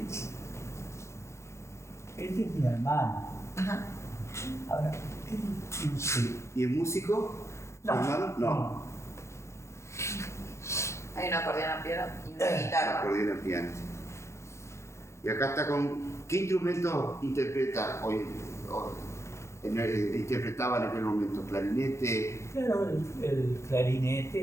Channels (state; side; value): late; right; 0.14 ms